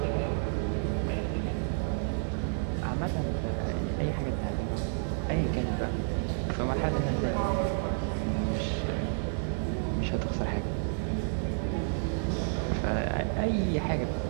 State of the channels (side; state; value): left; silent; digital silence